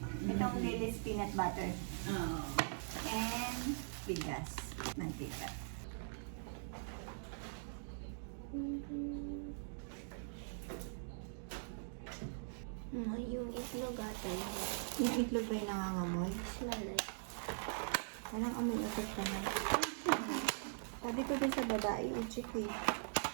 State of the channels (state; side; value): silent; left; digital silence